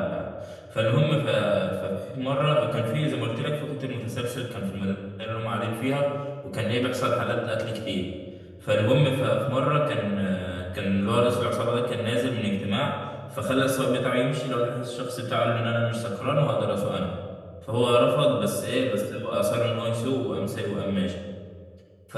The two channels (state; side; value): identical; both; correlation 1.00